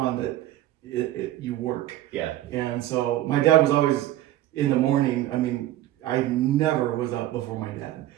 that you work. Yeah. And so my dad was always in the morning. I mean, I never was up before my dad.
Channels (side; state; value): left; quieter; 14.3 dB